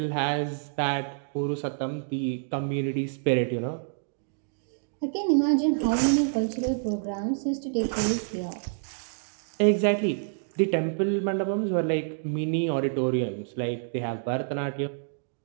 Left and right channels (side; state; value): left; silent; digital silence